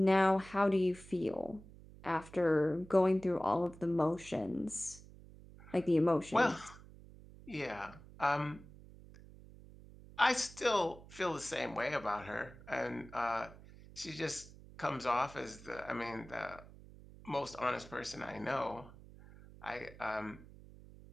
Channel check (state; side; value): noise; right; hum, 19 dB below the sound